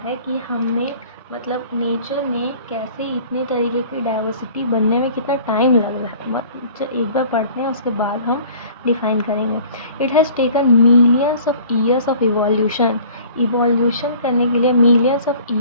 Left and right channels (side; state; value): both; inverted; correlation -0.49